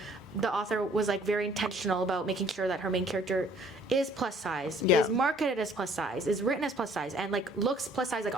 the author was like very intentional about making sure that her main character is plus size, is marketed as plus size, is written as plus size, and like looks plus size like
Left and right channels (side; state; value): both; normal; correlation 0.58